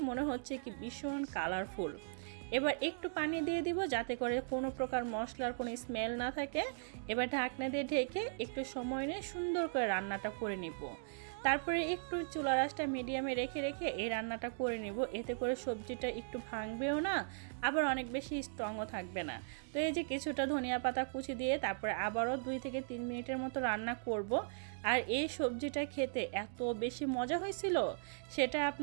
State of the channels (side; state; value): left; silent; digital silence